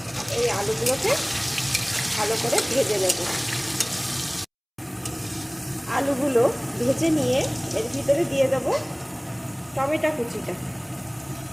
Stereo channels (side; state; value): both; identical; correlation 1.00